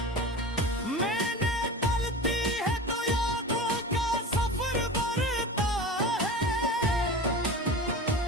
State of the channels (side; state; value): both; normal; correlation 0.32